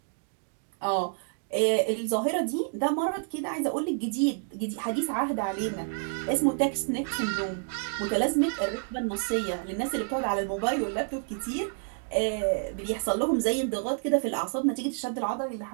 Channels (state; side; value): silent; left; 59 dB below the other